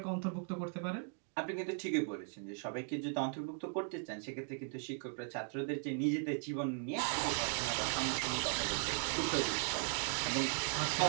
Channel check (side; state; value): left; silent; 53 dB below the other